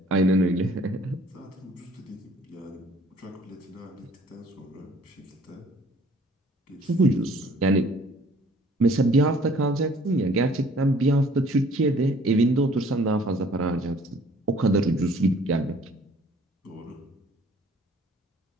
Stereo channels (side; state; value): both; normal; correlation 0.56